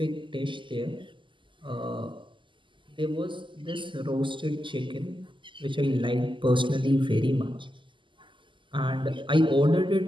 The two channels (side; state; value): left; late; 0.24 ms